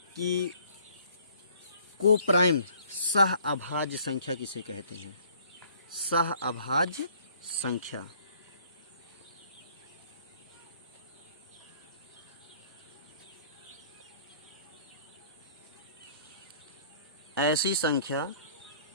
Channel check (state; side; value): inverted; both; correlation -0.57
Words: कि कोप्राइम सह अभाज्य संख्या किसे कहते हैं? सह अभाज्य संख्या। ऐसी